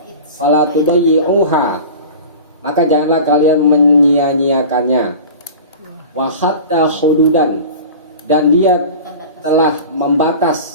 Fala tudayyi'uha, maka janganlah kalian menyia-nyiakannya. Wa hatta hududan, dan dia telah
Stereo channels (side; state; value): both; inverted; correlation -0.36